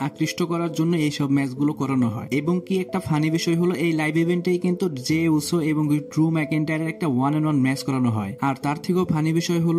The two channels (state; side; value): identical; both; correlation 1.00